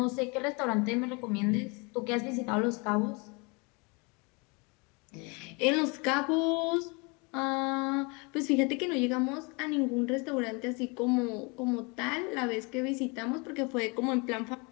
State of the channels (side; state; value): right; quieter; 30.0 dB